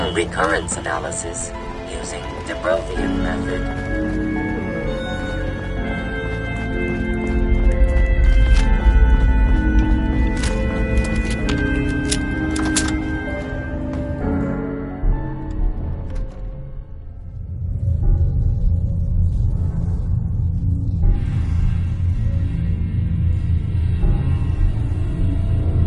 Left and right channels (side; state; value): both; identical; correlation 1.00